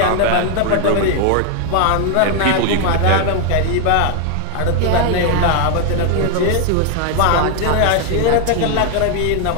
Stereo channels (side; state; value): both; different; correlation 0.01